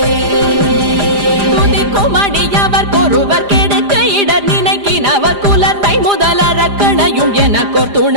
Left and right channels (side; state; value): left; late; 5.0 ms